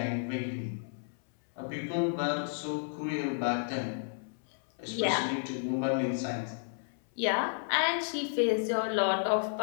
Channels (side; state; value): right; silent; 56 dB below the other